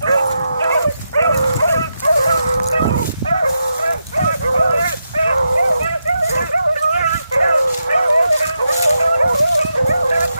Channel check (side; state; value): both; inverted; correlation -0.86